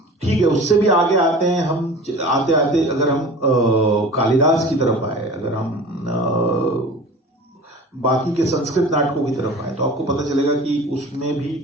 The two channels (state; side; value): normal; both; correlation 0.39